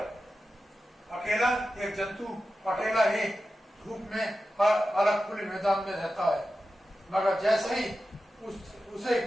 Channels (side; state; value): both; normal; correlation 0.92